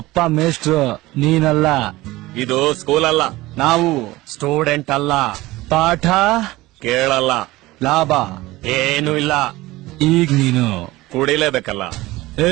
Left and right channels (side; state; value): left; quieter; 18.9 dB